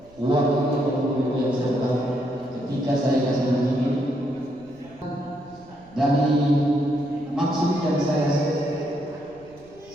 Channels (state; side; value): noise; right; rumble, 26 dB below the sound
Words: uang itu yang serta ketika saya kasih begini dari maksud yang saya